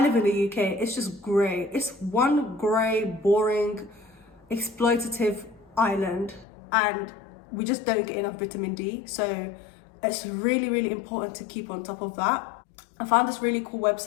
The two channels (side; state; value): right; drops out; at 6.5 s